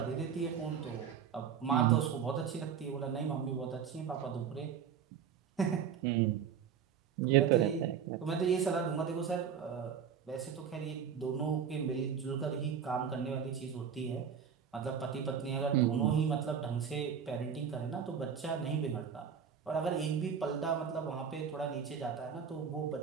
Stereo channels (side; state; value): left; quieter; 7.5 dB